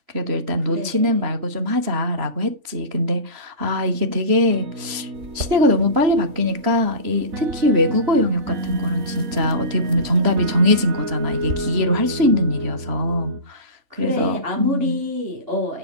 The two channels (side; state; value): left; late; 3.0 ms